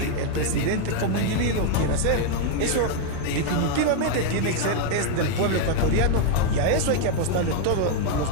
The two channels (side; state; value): both; different; correlation 0.00